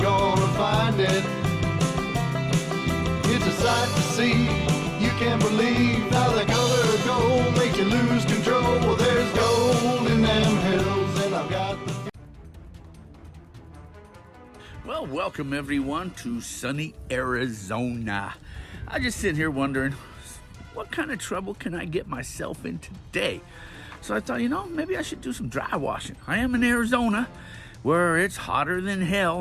find it. It's a sight to see, you can't believe how the color of gold makes you lose control. Well, there's gold in them hills and I've got the... Well, welcome everyone to sunny Arizona. I just sit here wondering, what kind of trouble can I get myself in today? So I thought, maybe I should do some dry washing. I am in Arizona, where it's hotter than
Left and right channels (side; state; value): both; identical; correlation 1.00